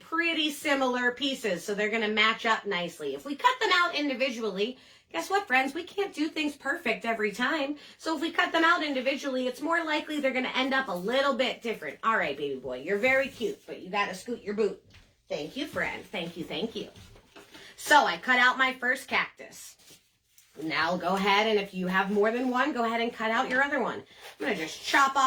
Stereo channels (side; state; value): both; identical; correlation 1.00